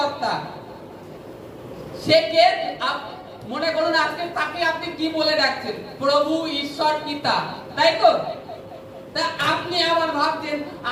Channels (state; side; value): identical; both; correlation 1.00